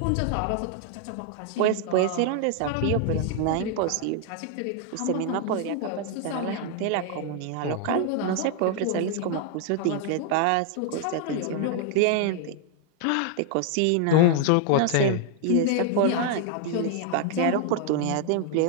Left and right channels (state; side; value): different; both; correlation 0.00